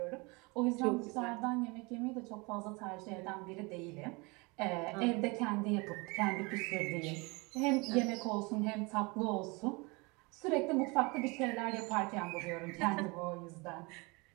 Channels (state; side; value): quieter; left; 27.3 dB